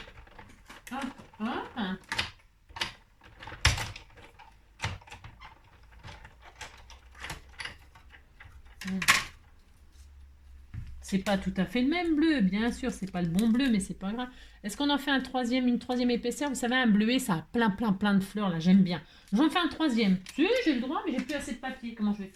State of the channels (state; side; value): identical; both; correlation 1.00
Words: Hop, hop. C'est pas tout à fait le même bleu, bien sûr, c'est pas le bon bleu, mais c'est pas grave. Est-ce qu'on en fait une troisième épaisseur? Vous savez, un bleuet, ça a plein de fleurs, là, j'aime bien. J'en fais un troisième. Si, j'ai le droit, mais j'ai plus assez de papier. Comment je vais